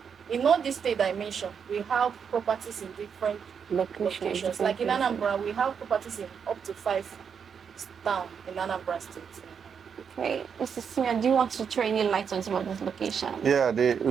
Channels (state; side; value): quieter; left; 6.9 dB